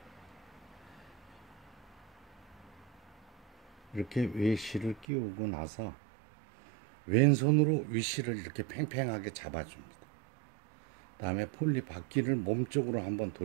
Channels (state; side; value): drops out; left; at 5.1 s